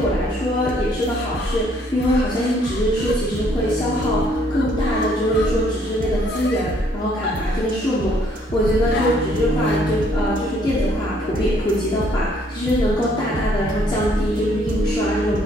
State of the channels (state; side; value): normal; both; correlation 0.65